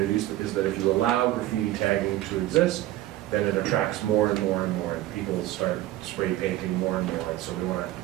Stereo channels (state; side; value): quieter; left; 15.2 dB